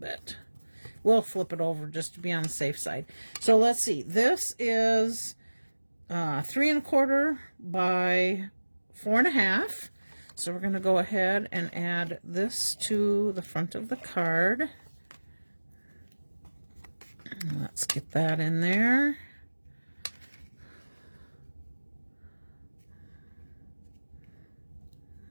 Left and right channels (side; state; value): both; inverted; correlation -1.00